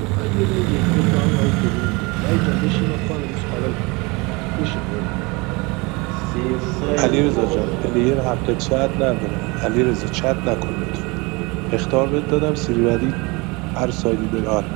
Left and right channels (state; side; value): quieter; left; 26.3 dB